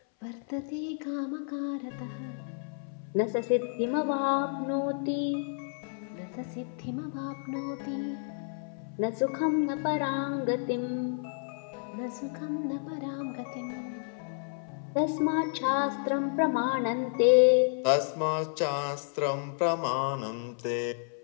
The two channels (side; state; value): right; silent; 57 dB below the other